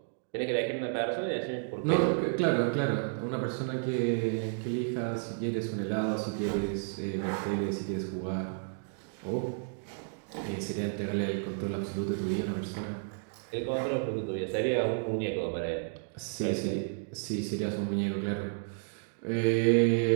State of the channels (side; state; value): left; silent; digital silence